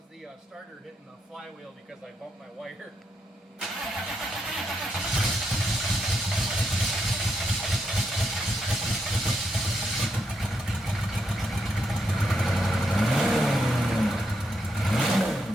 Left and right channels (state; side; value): normal; both; correlation 0.80